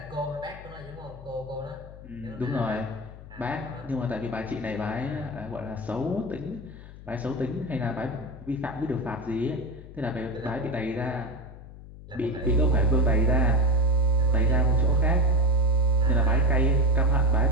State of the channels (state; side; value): noise; left; hum, 16 dB below the sound